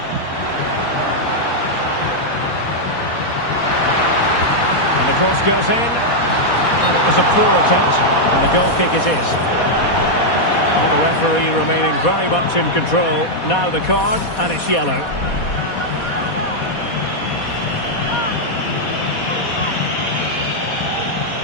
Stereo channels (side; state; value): right; late; 4.2 ms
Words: And the cross goes in. And it was a poor attempt. And the goal kick it is. And the referee remaining very much in control. Now the card, and it's yellow.